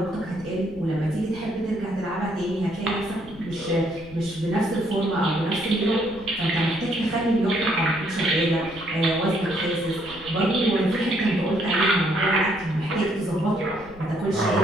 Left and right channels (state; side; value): noise; left; rumble, 20 dB below the sound